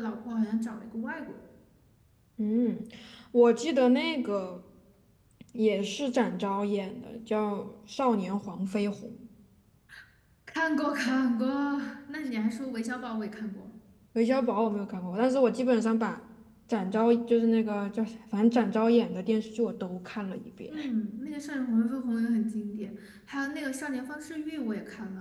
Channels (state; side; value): identical; both; correlation 1.00